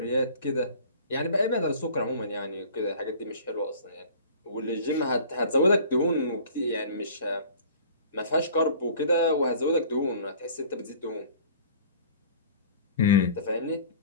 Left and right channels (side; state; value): both; inverted; correlation -0.46